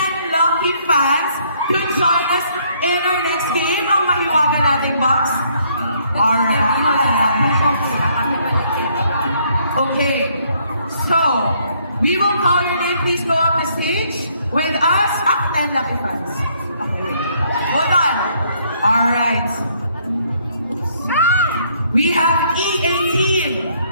lucky fans to join us in our next game. Ang mahiwaga nating box. Alright. Okay. So, we will call your name. Please go up the stage with us. 10 lucky fans. Okay. Hold on. Alright. We have E18.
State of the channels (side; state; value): both; inverted; correlation -0.67